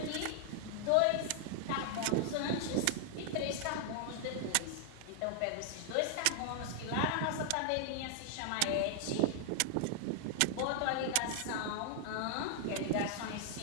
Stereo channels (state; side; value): different; both; correlation 0.00